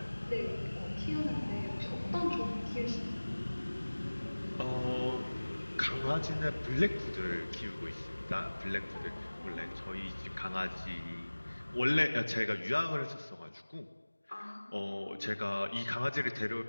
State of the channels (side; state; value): both; inverted; correlation -1.00